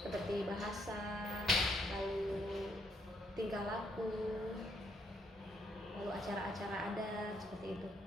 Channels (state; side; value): normal; both; correlation 0.73